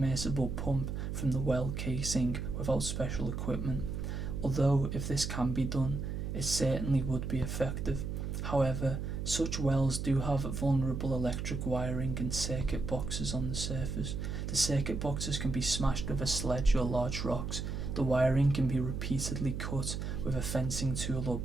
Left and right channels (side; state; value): right; noise; hum, 4 dB below the sound